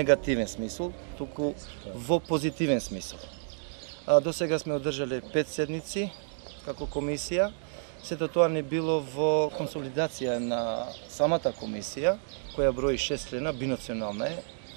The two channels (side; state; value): left; silent; digital silence